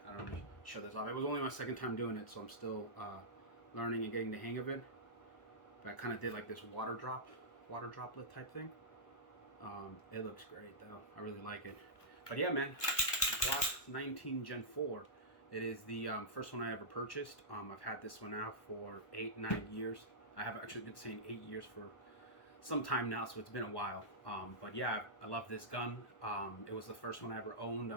I don't know, show this off. It was only my second time doing it, so I'm still learning and getting the hang of it. But I kind of did like this water droplet type thing. It looks great though. I really like it. But yeah, man, Glock 19 Gen 4. It is the first one I ever purchased. I've had this one out for 8-9 years. I have actually been saying 8 years for some time now, so it's been a while. But yeah, I love this gun. It was the first one I ever owned.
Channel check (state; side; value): late; right; 1.2 ms